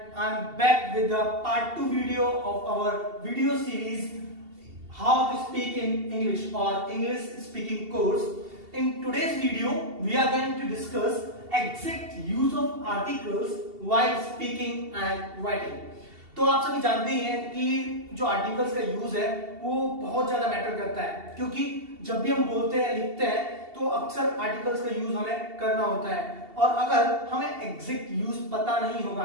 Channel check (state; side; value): late; left; 2.7 ms